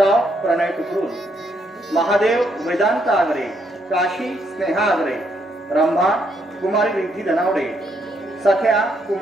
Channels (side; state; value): both; normal; correlation 0.74